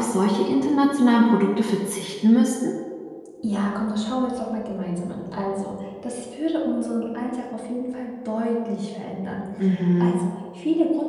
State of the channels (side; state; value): both; identical; correlation 1.00